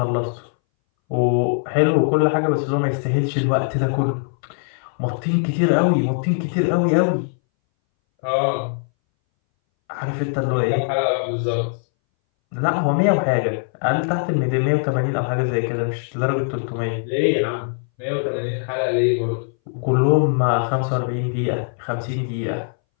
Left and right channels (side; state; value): right; silent; 62 dB below the other